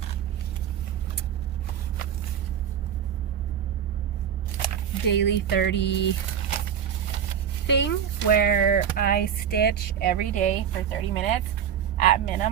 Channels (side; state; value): left; quieter; 8.6 dB